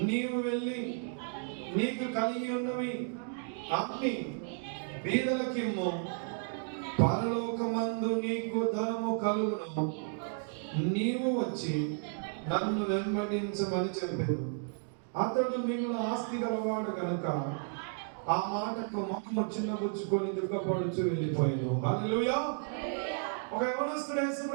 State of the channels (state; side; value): silent; left; 56 dB below the other